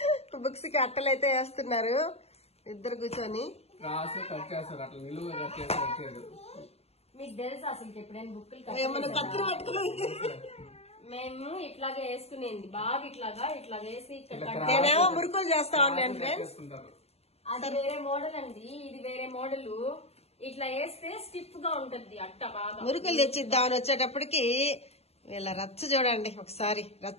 బుక్స్ కి అట్టలు అయితే వేస్తున్నారు ఇద్దరు కూర్చొని. మీకు తెలుసు అసలు ఎప్పుడైనా బుక్కులు మేము ఇట్లాగే వేసుకునేది బాగా ఇట్లాగా వేసి నేనేమో మురుకులు చేస్తా ఉన్నాను ఫ్రెండ్స్. అది వేరే మోడల్ అండి, ఇది వేరే మోడల్. ఇట్లా వేస్తే స్టిఫ్ గా ఉంటది అట్ట బాగా. మురుకులు తెచ్చిద్దామని వచ్చేటప్పటికి వీళ్ళ రచ్చ చూడండి ఒకసారి.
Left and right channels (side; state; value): right; late; 0.30 ms